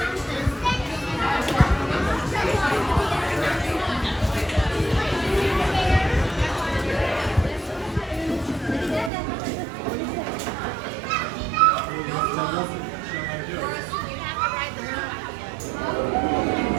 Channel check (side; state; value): left; drops out; at 9.1 s